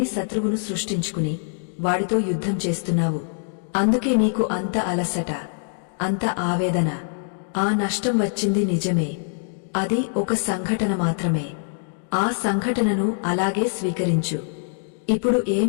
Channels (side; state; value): right; silent; digital silence